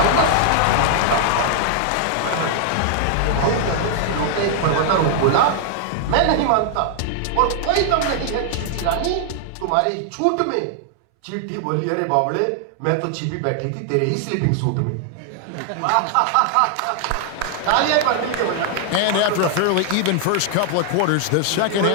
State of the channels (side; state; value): both; different; correlation 0.00